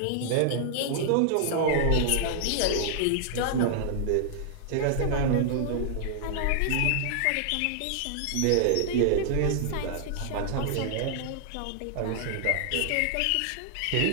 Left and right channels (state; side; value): different; both; correlation 0.00